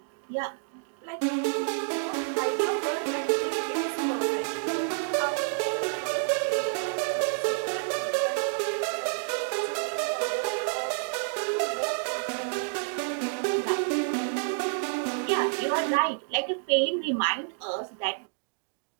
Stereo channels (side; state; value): left; silent; digital silence